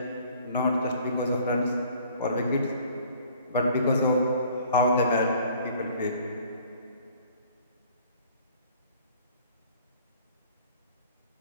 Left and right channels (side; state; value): both; inverted; correlation -0.54